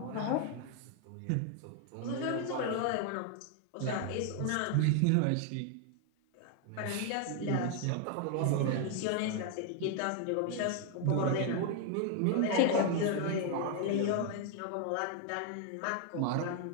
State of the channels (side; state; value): both; different; correlation 0.00